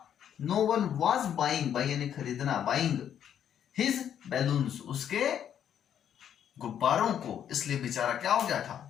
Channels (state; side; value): quieter; right; 9.4 dB